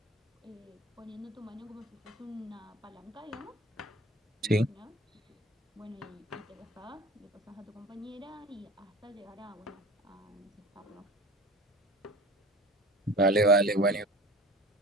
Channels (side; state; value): both; normal; correlation 0.40